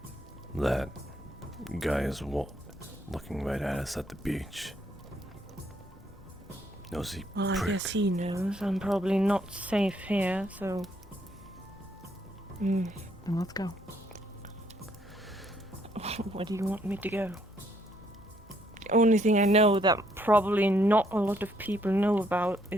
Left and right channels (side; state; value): both; normal; correlation 0.70